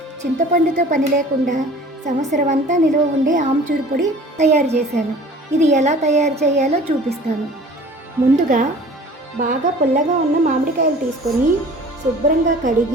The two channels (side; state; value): both; normal; correlation 0.46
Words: చింతపండుతో పని లేకుండా సంవత్సరం అంతా నిల్వ ఉండే ఆమ్చూరు పొడి తయారు చేశాను. ఇది ఎలా తయారు చేయాలో చూపిస్తాను. ముందుగా బాగా పుల్లగా ఉన్న మామిడికాయలు తీసుకొని శుభ్రంగా